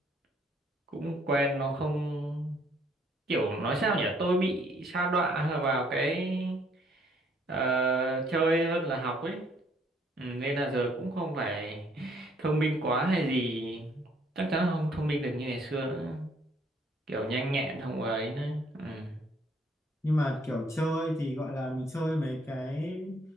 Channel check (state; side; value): normal; both; correlation 0.64